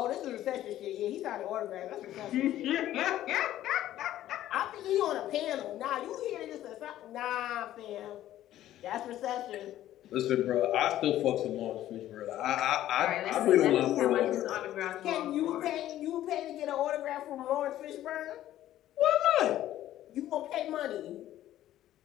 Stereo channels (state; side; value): quieter; right; 13.2 dB